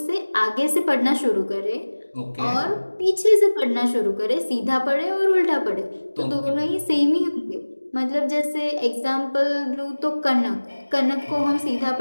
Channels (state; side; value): inverted; both; correlation -1.00